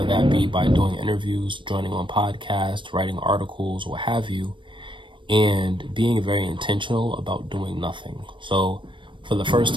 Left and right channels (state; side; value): late; left; 0.24 ms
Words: that be by doing interviews, joining on podcasts, writing articles, what have you, and being very intentional about doing nothing. So for the first